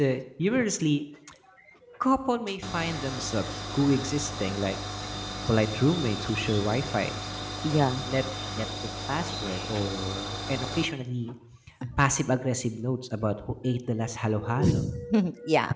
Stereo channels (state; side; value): identical; both; correlation 1.00